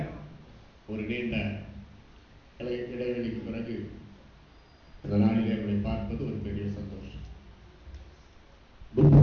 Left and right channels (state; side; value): identical; both; correlation 1.00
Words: ஒரு நீண்ட இடைவெளிக்கு பிறகு இந்த நாளிலே உங்களை பார்ப்பது ஒரு பெரிய சந்தோஷம்.